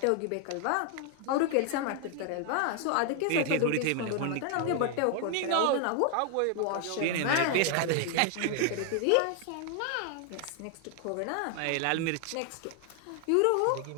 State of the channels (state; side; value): different; both; correlation 0.00